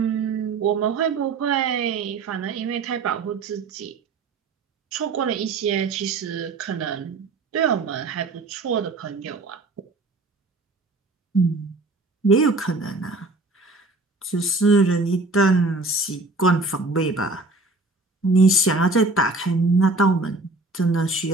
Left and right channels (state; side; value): quieter; left; 3.3 dB